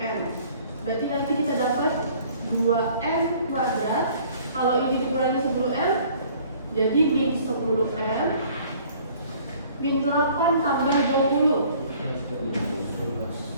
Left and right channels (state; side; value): inverted; both; correlation -0.55